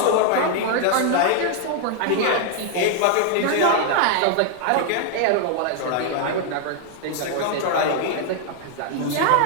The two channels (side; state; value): both; different; correlation 0.00